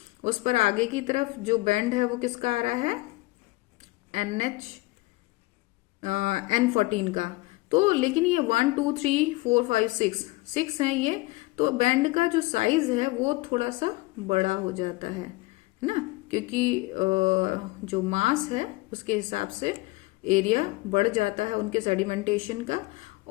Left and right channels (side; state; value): right; quieter; 21.9 dB